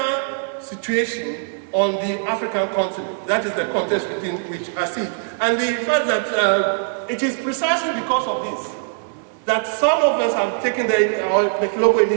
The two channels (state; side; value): silent; left; 61 dB below the other